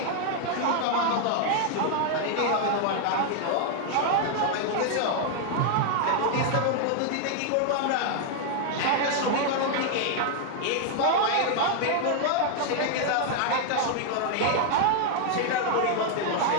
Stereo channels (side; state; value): both; different; correlation 0.00